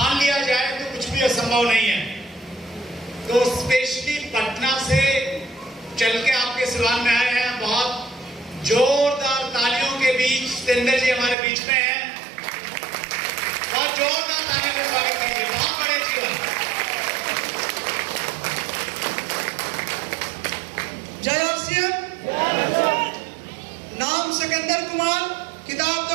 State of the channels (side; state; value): left; drops out; at 11.4 s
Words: लिया जाए तो कुछ भी असंभव नहीं है। तो स्पेशली पटना से चल के आपके सिवान में आए हैं। बहुत जोरदार तालियों के बीच सतेंद्र जी हमारे बीच में हैं। बहुत जोरदार तालियों का स्वागत कीजिए। बहुत बड़े जीवन। जय आरसीएम। नाम सिकंदर कुमार, किताब